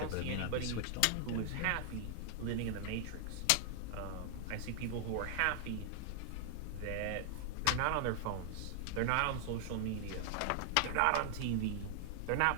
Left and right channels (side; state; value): both; different; correlation 0.00